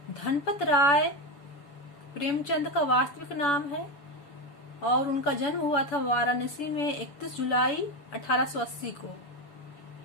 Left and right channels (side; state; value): right; late; 7.0 ms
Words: Dhanpat Rai Premchand का वास्तविक नाम है और उनका जन्म हुआ था वाराणसी में 31 जुलाई 1880 को।